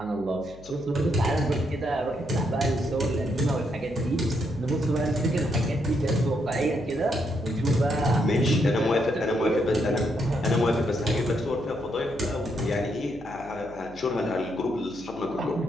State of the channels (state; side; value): noise; left; hum, 20 dB below the sound